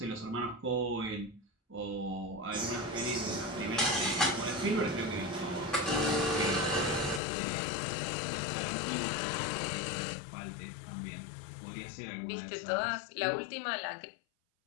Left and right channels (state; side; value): drops out; right; at 7.2 s